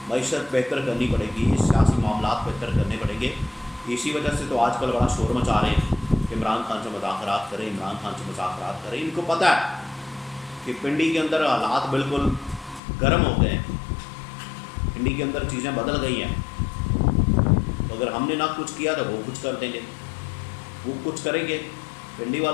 معیشت بہتر کرنی پڑے گی, سیاسی معاملات بہتر کرنے پڑیں گے. اسی وجہ سے تو آج کل بڑا شور مچا رہے ہیں کہ عمران خان سے مذاکرات کریں, عمران خان سے مذاکرات کریں. ان کو پتہ ہے کہ پنڈی کے اندر حالات بالکل گرم ہو گئے ہیں, پنڈی کے اندر چیزیں بدل گئی ہیں. تو اگر ہم نے نہ کچھ کیا تو وہ کچھ کر دیں گے, وہ کچھ کریں گے. پنڈی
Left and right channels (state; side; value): drops out; right; at 12.8 s